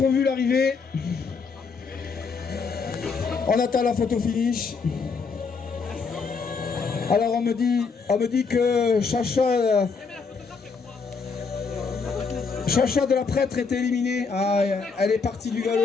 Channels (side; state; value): right; quieter; 5.0 dB